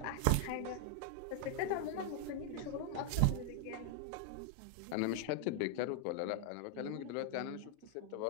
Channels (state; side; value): different; both; correlation 0.00